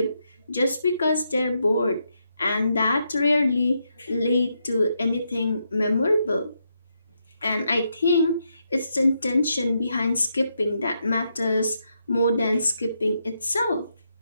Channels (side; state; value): both; inverted; correlation -0.80